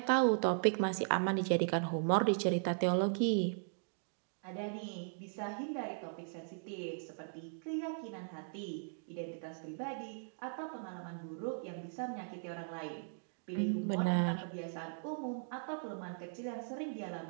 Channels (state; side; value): silent; left; digital silence